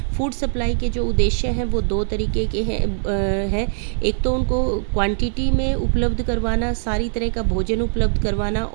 फूड सप्लाई के जो उद्देश्य हैं वो 2 तरीके के हैं। एक तो उनको क्वांटिटी में उपलब्ध करवाना, सारी तरह का भोजन उपलब्ध करवाना,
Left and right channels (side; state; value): left; silent; 63 dB below the other